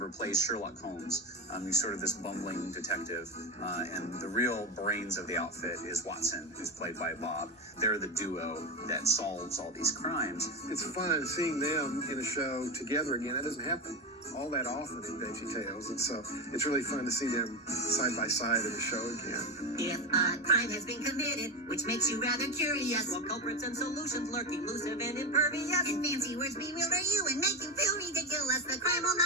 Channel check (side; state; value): both; normal; correlation 0.18